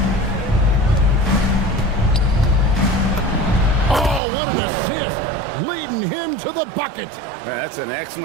Oh, what an assist. Leading him to the bucket. That's an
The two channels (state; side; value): drops out; left; at 4.2 s